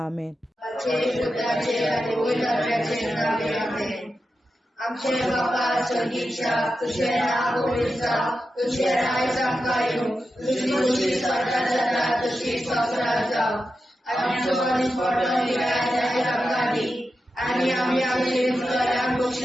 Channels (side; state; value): both; normal; correlation 0.90